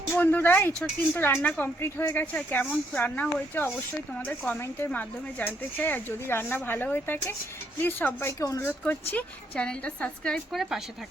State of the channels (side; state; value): both; normal; correlation 0.73